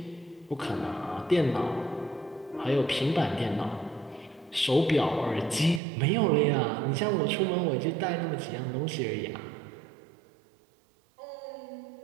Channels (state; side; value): drops out; left; at 5.8 s